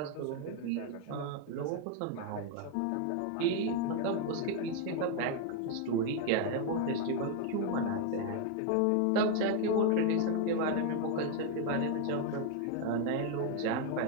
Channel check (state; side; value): different; both; correlation 0.01